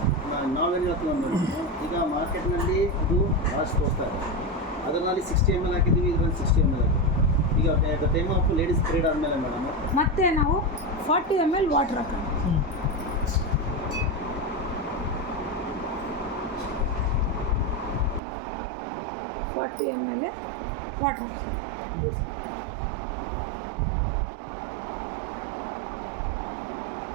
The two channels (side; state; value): left; drops out; at 18.2 s